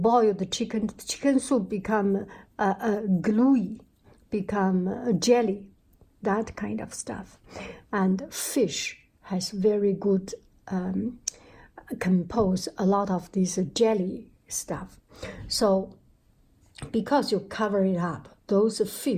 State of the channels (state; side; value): identical; both; correlation 1.00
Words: the chicken soup become gluey, become jelly, that kind of stuff. And fish has very good compose a lot of this jelly stuff. So because you cover it up, those